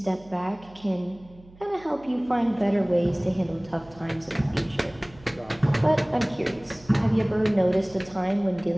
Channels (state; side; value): noise; right; hum, 23 dB below the sound